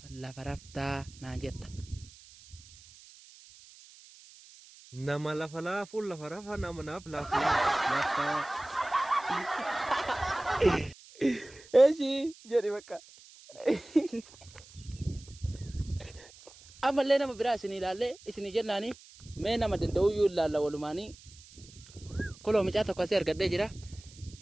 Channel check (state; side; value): noise; right; hiss, 21 dB below the sound